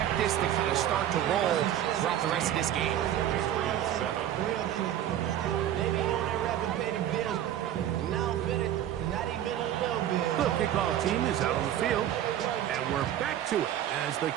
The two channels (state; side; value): quieter; left; 11.4 dB